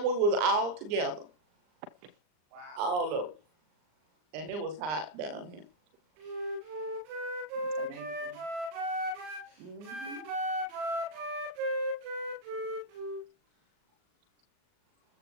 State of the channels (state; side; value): late; left; 39 ms